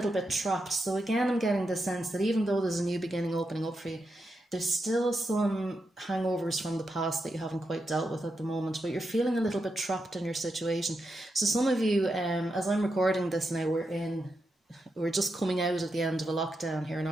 bit trapped. So again, I'm getting the sense that even though there's a new beginning opening up for you, there's still some hangovers from the past that you haven't quite dealt with at the moment, but you're feeling a little bit trapped in your situation. So some of you, as I'm recording this now, we're just coming out at the end of a lockdown here in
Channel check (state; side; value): normal; both; correlation 0.86